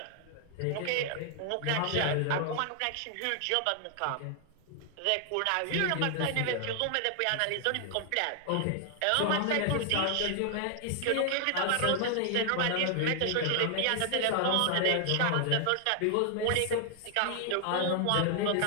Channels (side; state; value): both; different; correlation 0.00